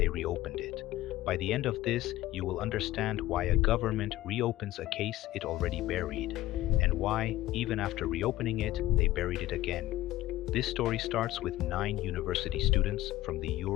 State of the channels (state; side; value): quieter; right; 15.9 dB